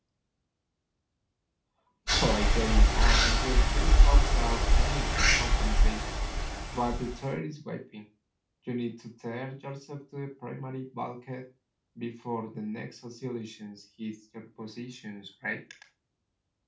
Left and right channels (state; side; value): identical; both; correlation 1.00